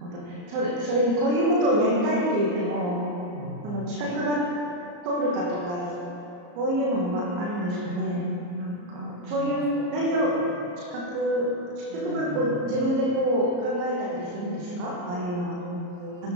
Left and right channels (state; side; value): late; left; 34 ms